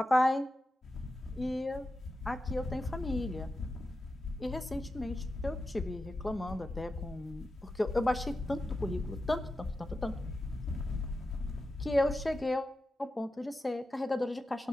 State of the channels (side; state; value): both; normal; correlation 0.90